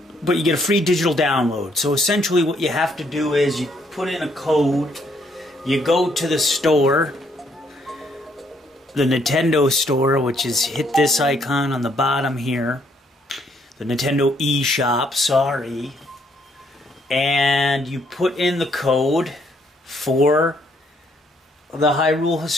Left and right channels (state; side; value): normal; both; correlation 0.70